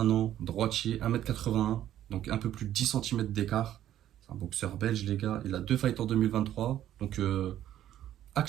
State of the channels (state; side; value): quieter; left; 12.0 dB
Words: ans, droitier, 1m81, donc un peu plus de 10 cm d'écart. C'est un boxeur belge, les gars. Il a 2 fights en 2023. Donc